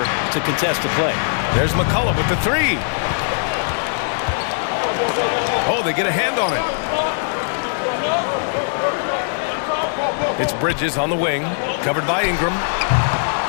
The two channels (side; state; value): right; silent; digital silence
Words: to contest the play. There's McCollum with the 3. Oh, they get a hand on it. It's Bridges on the wing, covered by Ingram.